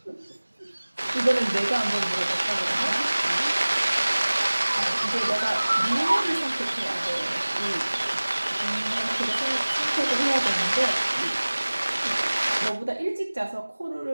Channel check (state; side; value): inverted; both; correlation -1.00